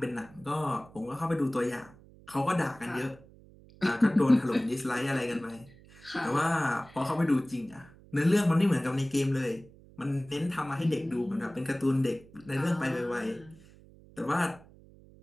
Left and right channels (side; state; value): right; noise; hum, 23 dB below the sound